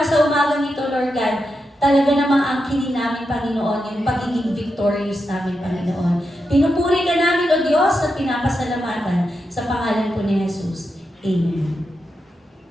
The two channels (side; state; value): both; normal; correlation 0.87